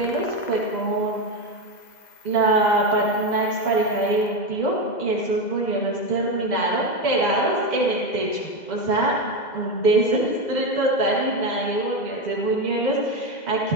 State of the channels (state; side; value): late; right; 2.0 ms